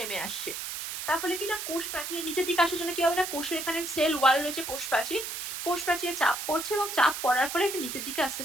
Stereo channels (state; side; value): noise; right; hiss, 6 dB below the sound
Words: আসছে। তার ফলে কি না, কোষ প্রাচীরের নিচের দিকে আসার জন্য কি হবে না, কোষের এখানে সেল ওয়াল রয়েছে, কোষ প্রাচীরে চাপ পড়ছে, এবং চাপ পড়ার ফলে এটা নিচের দিকে আস্তে